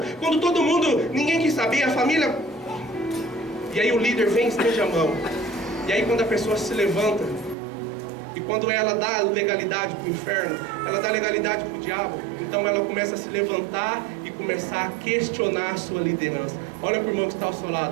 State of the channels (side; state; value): left; drops out; at 7.6 s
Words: quando todo mundo, ninguém quis saber, a família. E aí o líder vem e estende a mão. E aí quando a pessoa se levanta, e quando ela dá legalidade para o inferno, ela dá legalidade para o diabo, então ela começa a se levantar e começar a questionar a sua liderança. Olha para o irmão que está ao seu